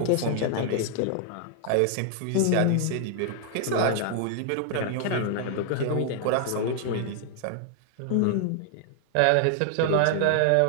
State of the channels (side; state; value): both; different; correlation -0.01